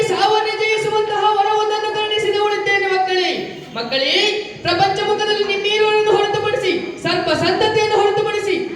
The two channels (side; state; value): both; identical; correlation 1.00